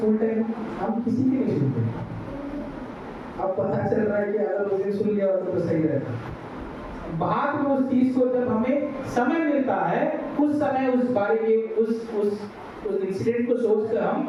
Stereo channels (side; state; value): both; identical; correlation 1.00